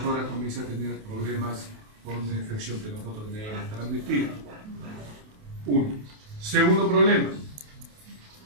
horas comience a tener problemas con una infección que nosotros debemos transmitir. 1. Segundo problema.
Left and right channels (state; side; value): late; left; 28 ms